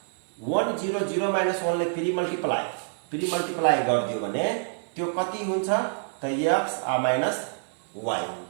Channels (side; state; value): left; silent; 57 dB below the other